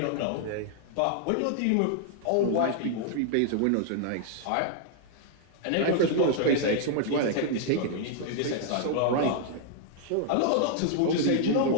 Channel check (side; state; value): both; different; correlation -0.01